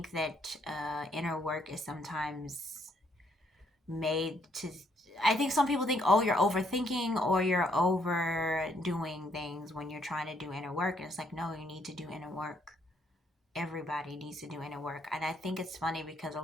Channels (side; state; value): both; normal; correlation 0.71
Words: that inner work is sometimes made to. I think some people think, oh, you're overthinking or you're overdoing things when you're trying to do inner work. And it's like, no, you need to do inner work. Everybody needs to do inner work. And I think it's funny because a